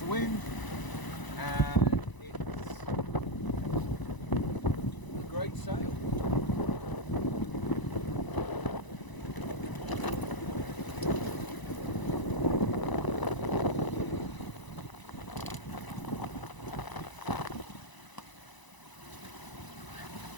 of wind, and it's a great sail.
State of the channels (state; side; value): late; right; 1.0 ms